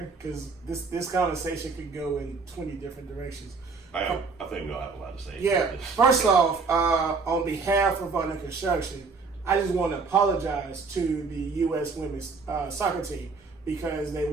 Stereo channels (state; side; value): quieter; left; 4.5 dB